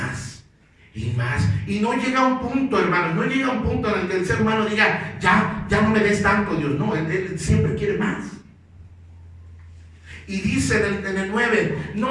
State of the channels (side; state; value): both; identical; correlation 1.00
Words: y más. Y no llega a un punto, hermanos, no llega a un punto en el que el ser humano diga: ya no me des tanto, Dios. No, él siempre quiere más. Y dice en el 9: